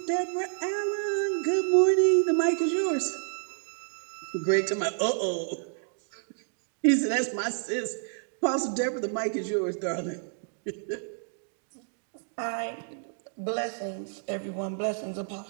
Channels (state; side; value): silent; left; digital silence